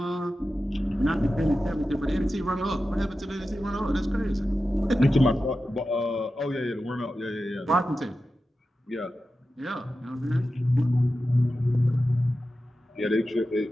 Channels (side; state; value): both; normal; correlation 0.92